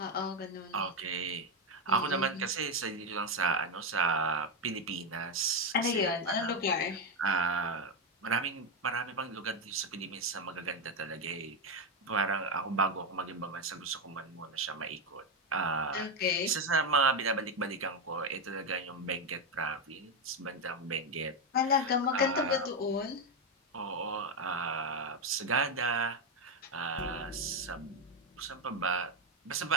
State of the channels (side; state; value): both; normal; correlation 0.07